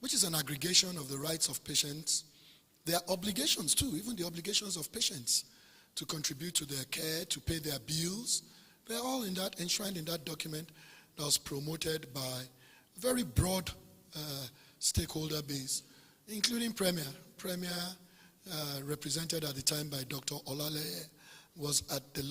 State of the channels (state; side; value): identical; both; correlation 1.00